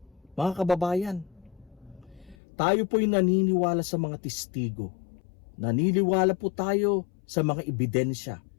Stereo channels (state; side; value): drops out; right; at 2.4 s